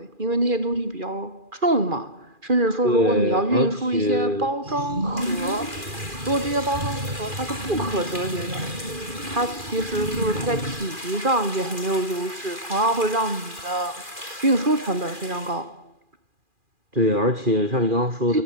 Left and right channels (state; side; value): late; left; 2.4 ms